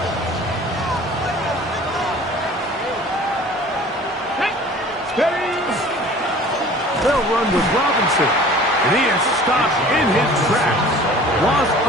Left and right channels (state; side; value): normal; both; correlation 0.46